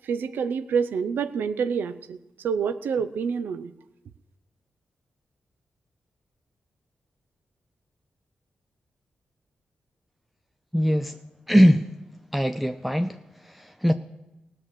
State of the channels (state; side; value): normal; both; correlation 0.92